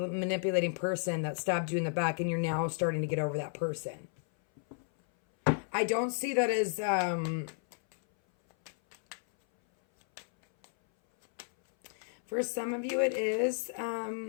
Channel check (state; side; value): silent; right; 56 dB below the other